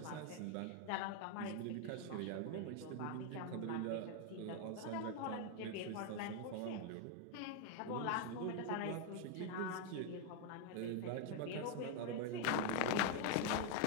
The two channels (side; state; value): both; different; correlation 0.00